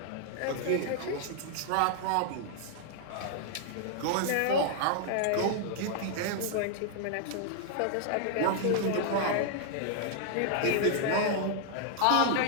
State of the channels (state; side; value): different; both; correlation -0.01